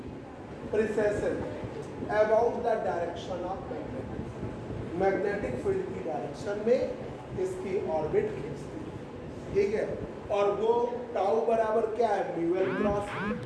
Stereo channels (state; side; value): identical; both; correlation 1.00